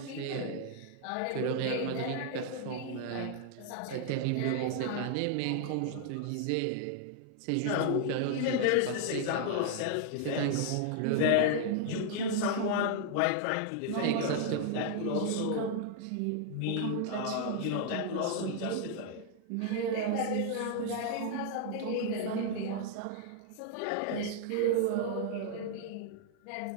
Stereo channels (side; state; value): both; different; correlation 0.00